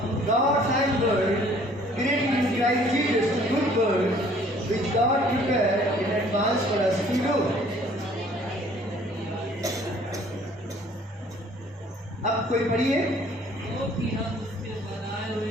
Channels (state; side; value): normal; both; correlation 0.56